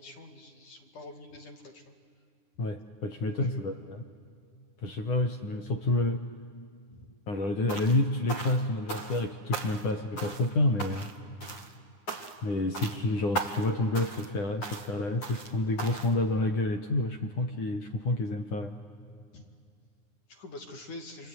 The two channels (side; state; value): right; late; 9.6 ms